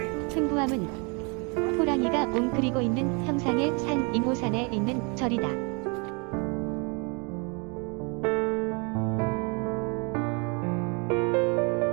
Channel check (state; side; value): quieter; left; 32.8 dB